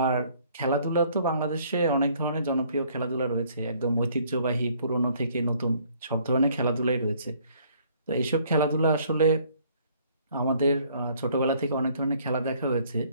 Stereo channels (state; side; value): inverted; both; correlation -0.61